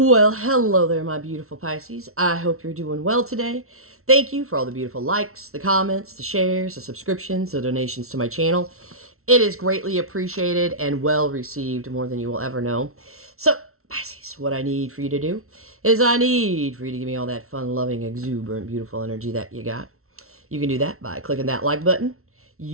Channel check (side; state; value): left; late; 0.63 ms